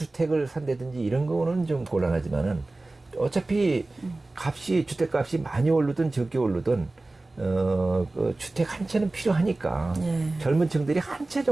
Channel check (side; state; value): left; quieter; 3.0 dB